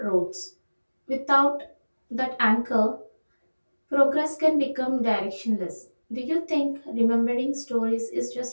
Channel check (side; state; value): both; inverted; correlation -1.00